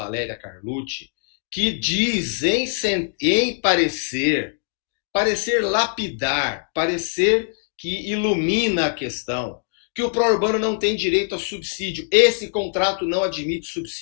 Carlucci, que diz em parecer lapidar, parecer que ilumina a questão, que o pró-urbano não tem direito a subsídio. Esse contrato não admite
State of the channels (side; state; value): right; silent; digital silence